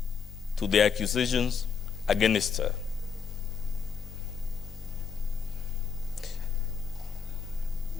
to the accusations against her?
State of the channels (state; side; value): quieter; right; 6.3 dB